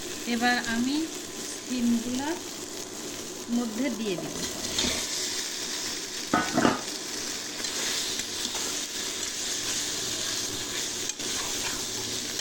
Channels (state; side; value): identical; both; correlation 1.00